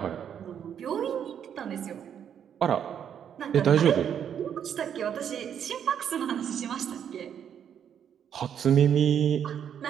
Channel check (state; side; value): quieter; left; 8.7 dB